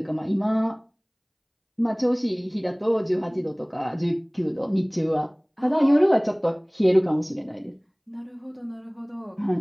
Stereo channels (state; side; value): identical; both; correlation 1.00